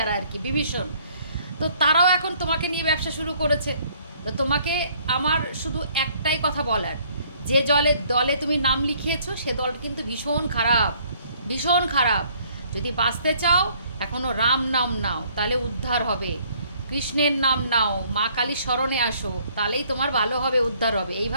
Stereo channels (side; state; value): both; inverted; correlation -0.61